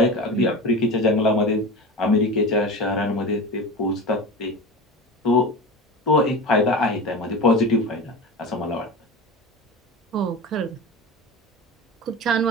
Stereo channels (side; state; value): both; normal; correlation 0.29